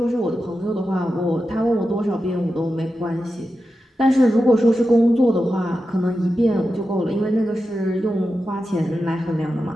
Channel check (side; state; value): both; normal; correlation 0.91